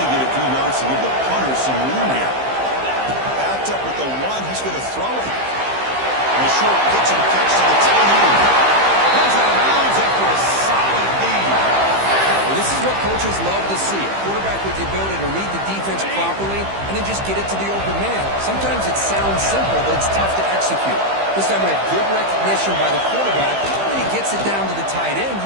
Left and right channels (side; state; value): left; late; 15 ms